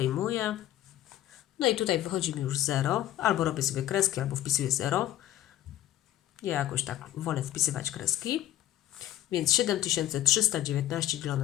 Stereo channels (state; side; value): quieter; right; 13.2 dB